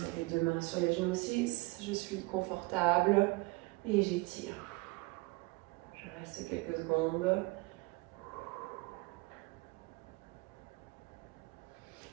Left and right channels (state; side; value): quieter; left; 25.0 dB